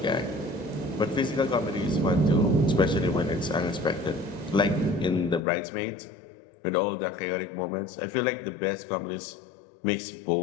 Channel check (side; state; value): right; drops out; at 5.4 s